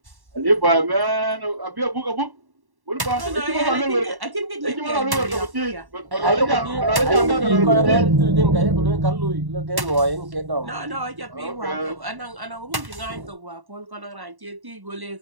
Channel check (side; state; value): left; late; 1.1 ms